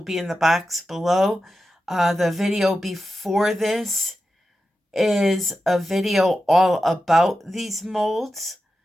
in the box below. The video before this is a video all about these molds.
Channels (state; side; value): normal; both; correlation 0.91